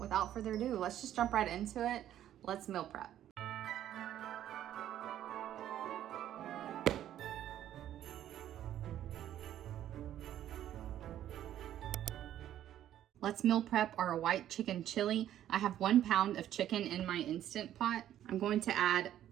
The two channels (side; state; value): left; quieter; 11.6 dB